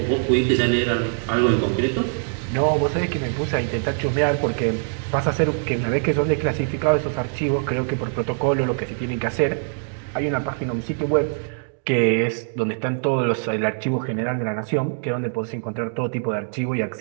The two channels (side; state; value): left; silent; digital silence